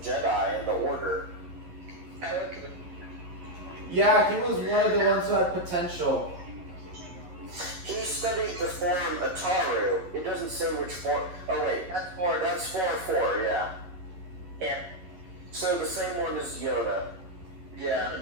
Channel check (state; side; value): late; left; 11 ms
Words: Jedi in the Order? Yeah, he was one of the ones who had potential. He studied the form Ataru. It doesn't say which form. Oh wait, that's Form 4, yeah. Yeah. So the same one as Yoda.